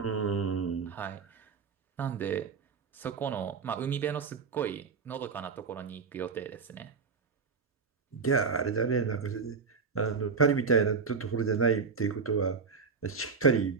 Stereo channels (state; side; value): quieter; left; 5.3 dB